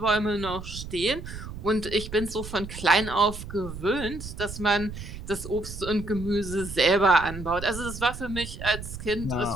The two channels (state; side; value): noise; right; rumble, 10 dB below the sound